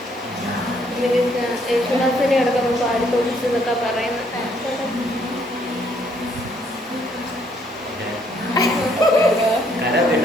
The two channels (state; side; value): normal; both; correlation 0.68